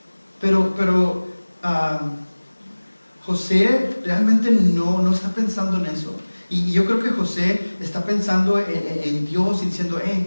Pero José realmente no está pensando en eso. Y yo creo que José está pensando en Dios y diciendo,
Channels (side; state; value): both; inverted; correlation -1.00